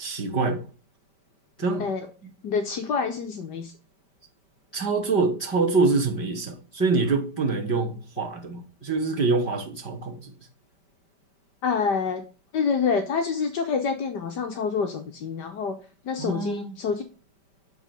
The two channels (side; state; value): right; late; 5.1 ms